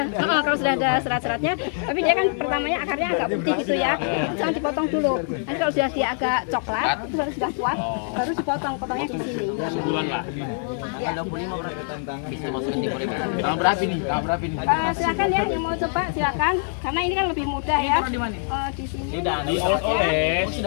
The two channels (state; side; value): silent; right; 60 dB below the other